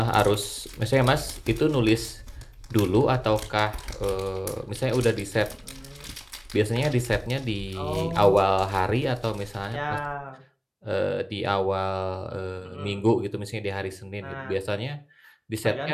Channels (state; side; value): identical; both; correlation 1.00